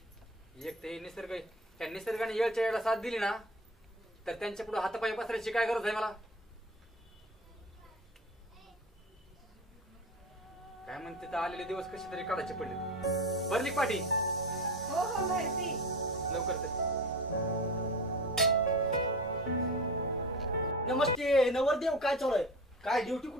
एक ते निसर्ग, त्या निसर्गाने येळच्या वेळेला साथ दिली ना, तर त्यांच्या पुढे हातापाय पसरायची काय गरज आहे मला? काय म्हणते तर आलेले दिवस कसे तरी काढायचे पडले. भरली का पाठी? हो हो भरती. लवकर चल. नमस्ते नवरदेव, काय चालू आहे? काय ड्युटी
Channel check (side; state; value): both; normal; correlation 0.30